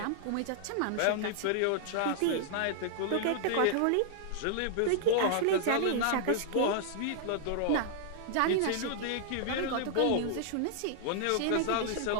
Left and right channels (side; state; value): both; different; correlation -0.01